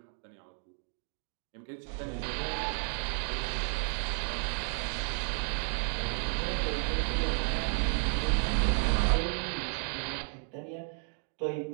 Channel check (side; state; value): left; silent; 56 dB below the other